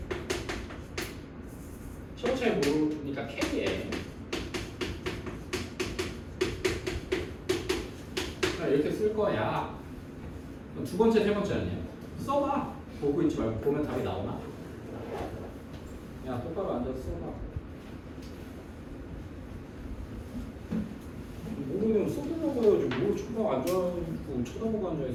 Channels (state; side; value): identical; both; correlation 1.00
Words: 첫 번째 모르니까 k에 이렇게 쓸 거야. 두 번째, 세 번째는요. 써봐. 보고 있지 말고 보면 답이 나오나? 야 똑바로 앉아서 써봐. 모르면 써보려고 해야지. 뭘 앉아있고 쳐다보고